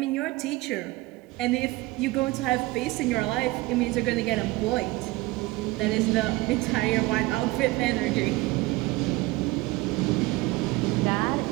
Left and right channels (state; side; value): quieter; left; 20.5 dB